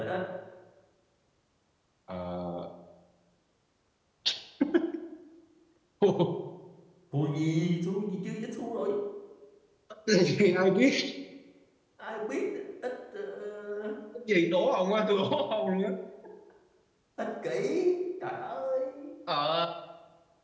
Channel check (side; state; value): both; identical; correlation 1.00